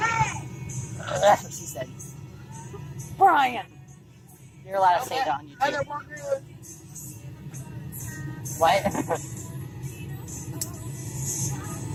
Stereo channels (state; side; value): identical; both; correlation 1.00